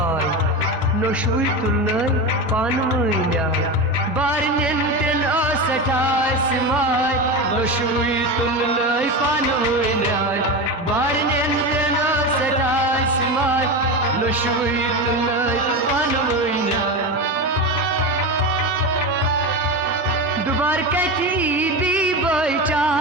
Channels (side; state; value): both; normal; correlation 0.21